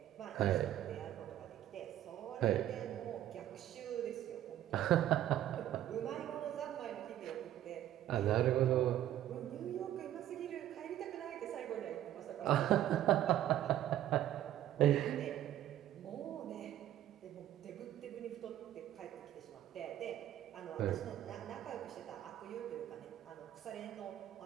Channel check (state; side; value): quieter; left; 12.3 dB